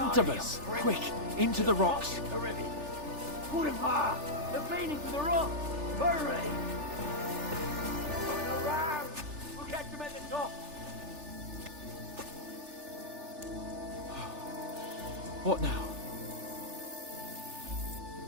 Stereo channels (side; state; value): left; late; 3.4 ms